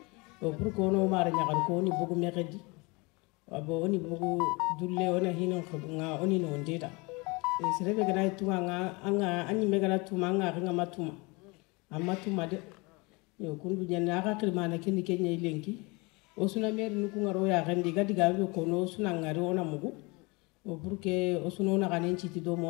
o pour ko no mara nyagal ko ni bugu mekedi abo oni bugu dulle ona hino ko nga oni no ndeta e serebe ga tunga nga anga anyi megala tuma nga nga matuma amatuma de yo kundu nyana ka kirmana keni kenya ilenki osuna meri nuku ngaro ya gandi gadi gabe ko no suna ngaro ona mugu o burke osuna na ganen chiti do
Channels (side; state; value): right; quieter; 27.1 dB